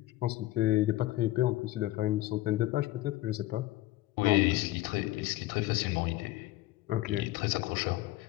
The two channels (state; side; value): quieter; right; 16.9 dB